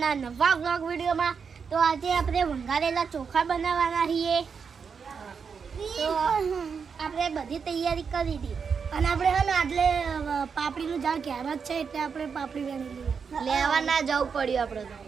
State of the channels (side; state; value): left; quieter; 6.0 dB